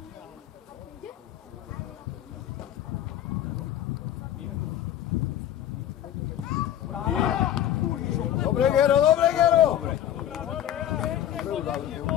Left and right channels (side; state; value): right; quieter; 11.4 dB